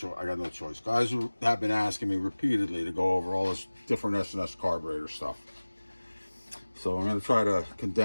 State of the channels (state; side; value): inverted; both; correlation -1.00